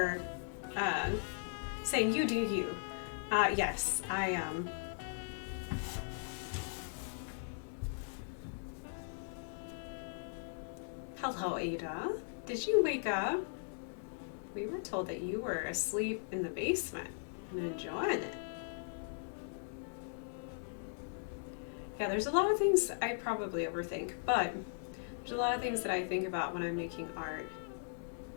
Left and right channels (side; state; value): right; silent; digital silence